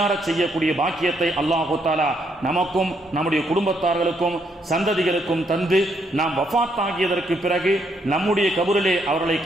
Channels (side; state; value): both; normal; correlation 0.74